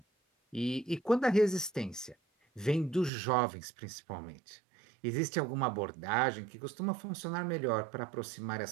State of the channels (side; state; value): left; drops out; at 3.1 s